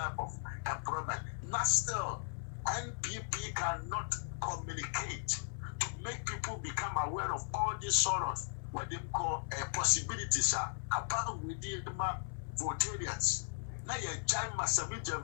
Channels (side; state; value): right; silent; 53 dB below the other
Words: of employment. Not still. NPP cannot communicate to make people become aware of all these sort of what they call possibilities about within the Votarians. Now you join Massavage and